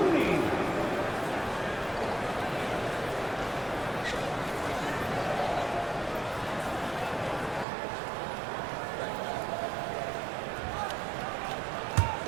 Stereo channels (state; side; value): drops out; left; at 7.7 s